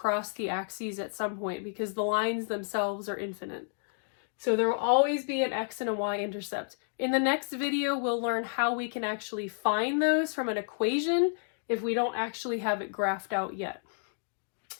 the axes at some point because the lines themselves are infinite. So there will always be an x and a y-intercept. In the next video, we'll learn how we can actually find those from an equation if we don't actually have it graphed out yet.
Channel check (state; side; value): silent; right; digital silence